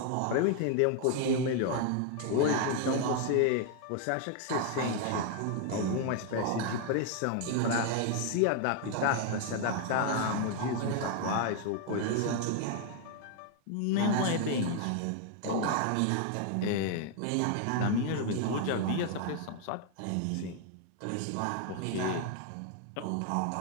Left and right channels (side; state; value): both; different; correlation 0.00